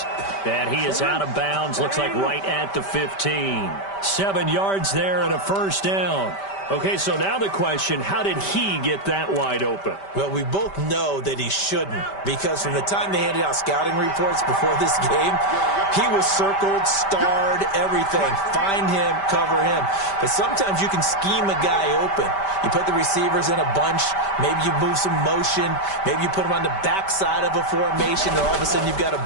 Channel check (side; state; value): right; late; 5.1 ms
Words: And he is out of bounds. Looks like right at the 15. 7 yards there and a first down. Okay, so now the question, how did he get that wide open? Well, we both know that he shouldn't, because from the time they handed out scouting reports before this game, he was circled, starred, everything. Find him, cover him. But sometimes you can scheme a guy open. You put the receivers in a bunch. Maybe you move some motion. Maybe you put them on the backside of a formation, and all of a sudden you've got a